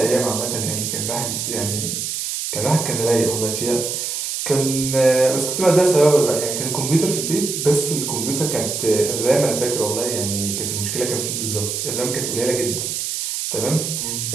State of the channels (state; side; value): noise; right; hiss, 3 dB below the sound